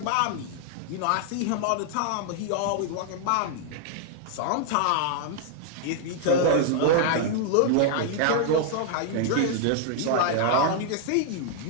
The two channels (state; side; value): different; both; correlation -0.01